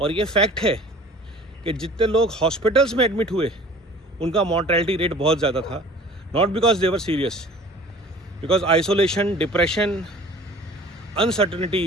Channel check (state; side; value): normal; both; correlation 0.46